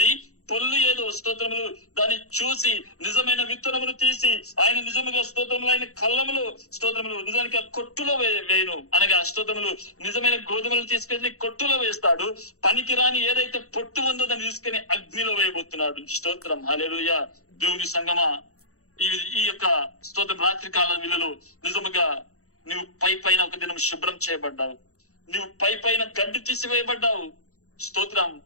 పొల్లు ఏదో స్తోత్రములు దాన్ని చూసి నిజమైన విత్తనమును తీసి ఆయన నిజముగా స్తోత్రములు ఆయన కళ్ళములు స్తోత్రములు నిజానికి ఆ కొట్టులో వేయను. అనగా స్తోత్రములు నిజమైన గోధుమలు తీసుకెళ్లి కొట్టులో వేస్తాడు. పనికిరాని ఏదైతే పొట్టు ఉందో దాన్ని తీసుకుని అగ్నిలో వేయబోతున్నాడు. స్తోత్రం, హల్లెలూయా. దేవుని సంగమా, ఈ యొక్క స్తోత్రం రాత్రి కాల విలువలో నిజముగా నువ్వు పైన ఒక దినం శుభ్రం చేయబడ్డావు, నువ్వు పైన గడ్డి తీసివేయబడ్డావు. స్తోత్రం.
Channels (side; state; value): right; late; 0.64 ms